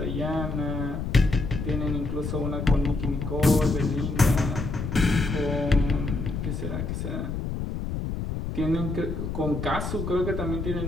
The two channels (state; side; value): noise; left; rumble, 4 dB below the sound